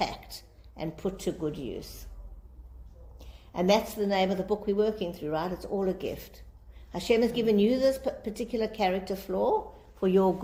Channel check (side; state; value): both; identical; correlation 1.00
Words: and put to good use. And that's the name of the book we're working through, right? It's all a gift. Hashem has given you this particular character flaw for your